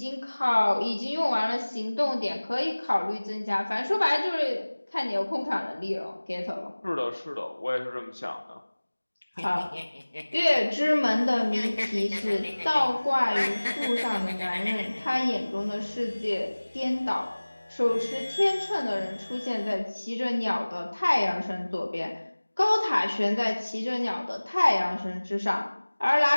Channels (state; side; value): inverted; both; correlation -1.00